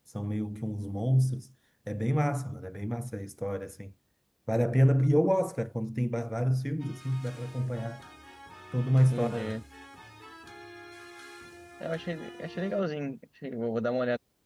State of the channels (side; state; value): both; identical; correlation 1.00